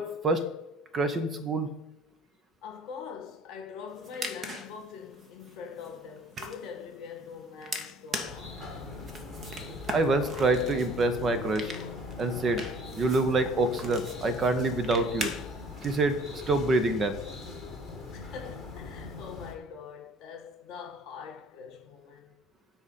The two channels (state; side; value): normal; both; correlation 0.52